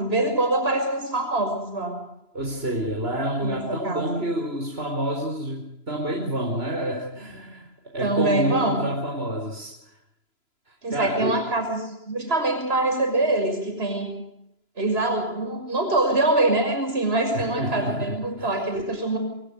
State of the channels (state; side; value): late; left; 2.9 ms